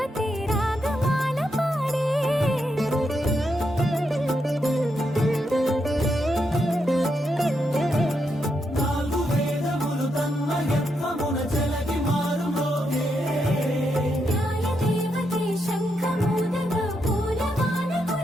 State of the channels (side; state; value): both; normal; correlation 0.81